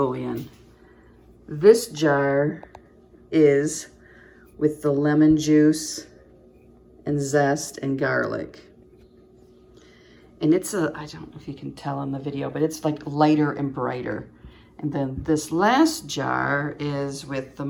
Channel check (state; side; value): identical; both; correlation 1.00